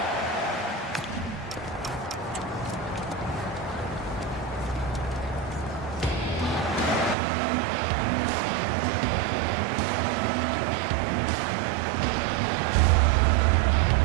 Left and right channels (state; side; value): drops out; left; at 7.2 s